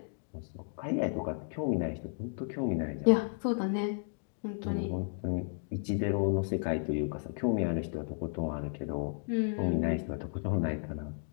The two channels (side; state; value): right; silent; digital silence